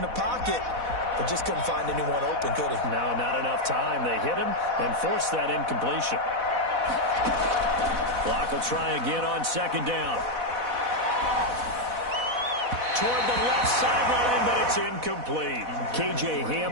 the pocket, but just couldn't find anyone open, could he? No, not enough time. They hit him and forced that incompletion. Clock will try again on 2nd down. Toward the left sideline, but it's incomplete. KJ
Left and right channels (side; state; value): left; late; 4.1 ms